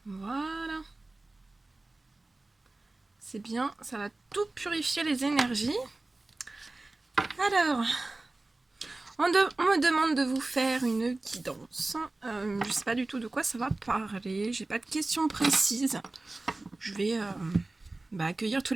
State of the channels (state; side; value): quieter; left; 3.0 dB